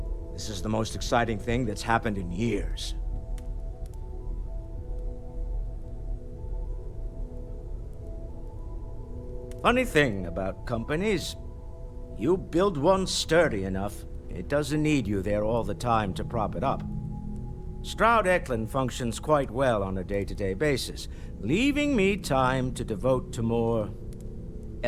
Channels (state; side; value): identical; both; correlation 1.00